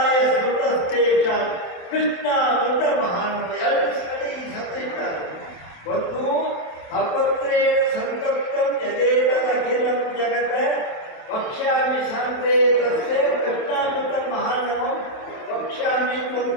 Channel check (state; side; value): late; right; 27 ms